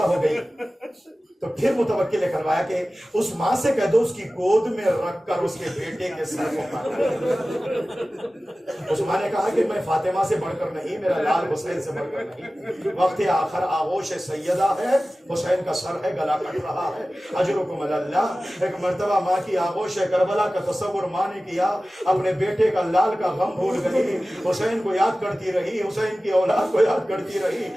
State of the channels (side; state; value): both; normal; correlation 0.96